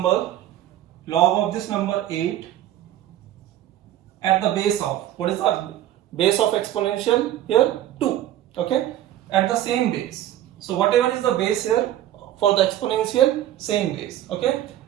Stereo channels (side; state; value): left; quieter; 12.8 dB